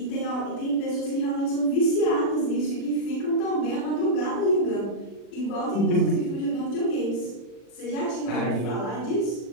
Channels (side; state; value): right; late; 40 ms